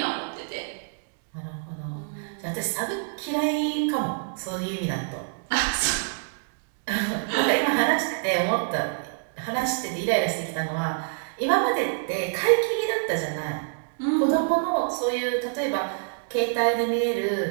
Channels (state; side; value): silent; left; digital silence